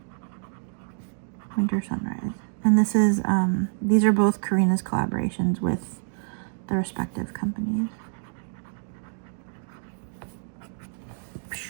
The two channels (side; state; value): left; silent; 59 dB below the other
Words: Winter Sunrise. And this is, these are both Karina's collaborations with the respective companies.